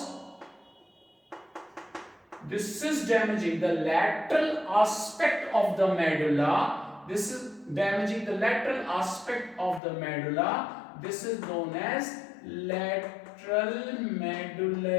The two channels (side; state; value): right; drops out; at 9.8 s